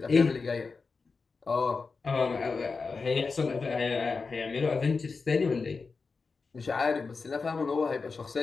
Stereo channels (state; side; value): quieter; right; 4.5 dB